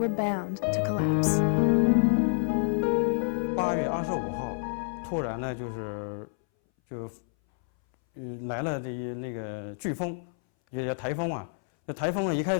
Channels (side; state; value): right; silent; 59 dB below the other